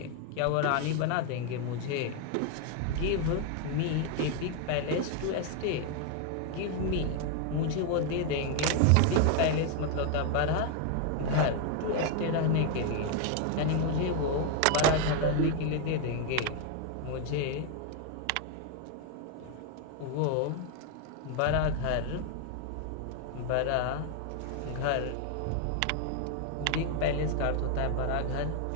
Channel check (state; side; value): different; both; correlation 0.00